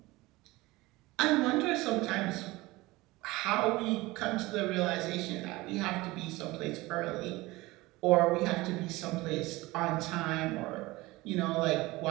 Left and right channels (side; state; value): left; quieter; 20.5 dB